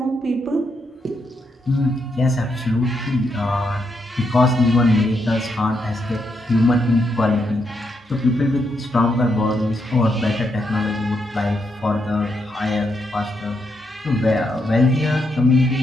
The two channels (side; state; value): both; normal; correlation 0.80